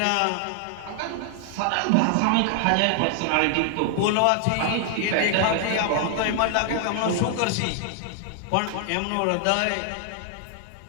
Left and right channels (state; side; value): different; both; correlation 0.00